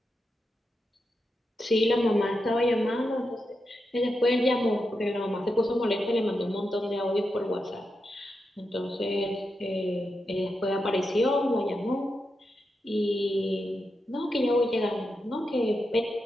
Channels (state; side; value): normal; both; correlation 0.87